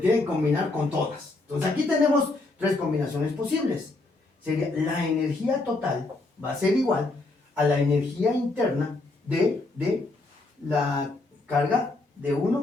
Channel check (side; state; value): right; quieter; 3.1 dB